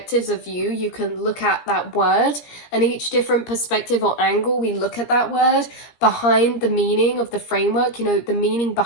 of view. You can look at that word, and each different perspective or angle we look at that word behind the meaning of the framework, you know, the meaning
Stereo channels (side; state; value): right; late; 17 ms